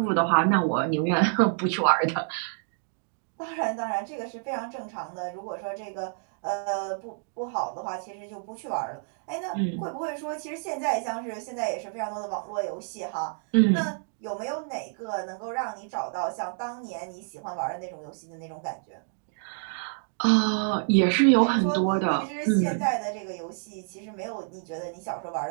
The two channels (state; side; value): silent; left; digital silence